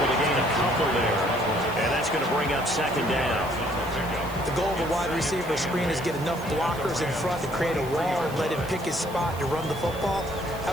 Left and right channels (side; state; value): right; noise; hiss, 18 dB below the sound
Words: to gain a couple there. And that's going to bring up 2nd down. The goal of a wide receiver screen is get enough blockers in front to create a wall and let him pick his spot to run the football. How